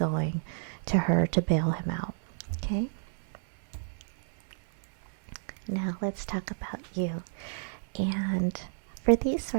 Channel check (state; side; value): silent; left; 57 dB below the other